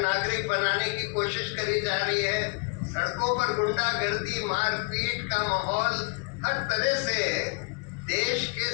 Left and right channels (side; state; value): right; quieter; 32.9 dB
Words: बनाने की कोशिश करी जा रही है। सड़कों पर गुंडागर्दी, मारपीट का माहौल, हर तरह से देश के